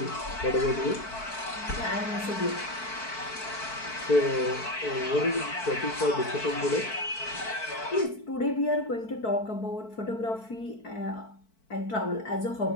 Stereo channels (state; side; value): late; right; 4.6 ms